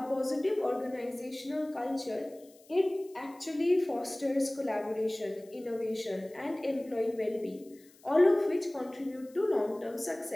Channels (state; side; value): noise; left; hiss, 27 dB below the sound